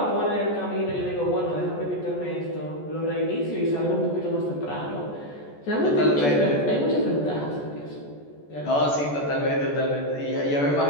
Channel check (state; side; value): late; right; 14 ms